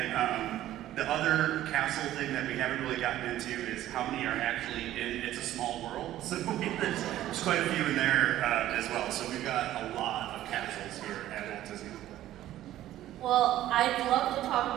the other castle thing that we haven't really gotten into is how many are actually in It's a Small World. So there's quite a few in there as well. So we've got a lot of castles here at Walt Disney World. Well, I'd love to talk a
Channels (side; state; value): left; quieter; 13.6 dB